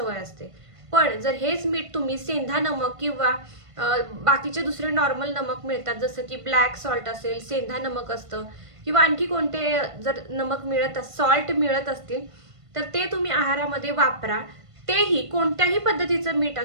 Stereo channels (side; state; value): left; late; 1.5 ms